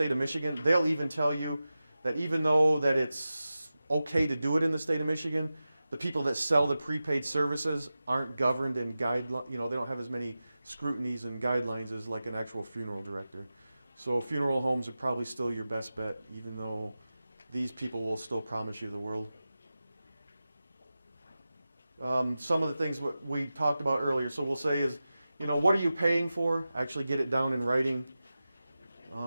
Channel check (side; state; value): both; inverted; correlation -0.94